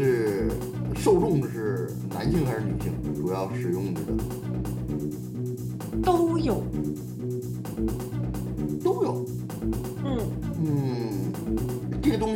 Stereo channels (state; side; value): identical; both; correlation 1.00